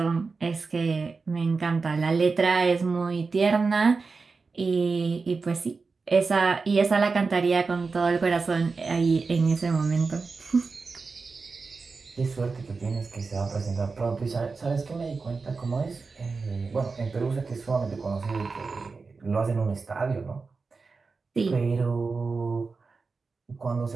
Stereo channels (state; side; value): quieter; left; 4.4 dB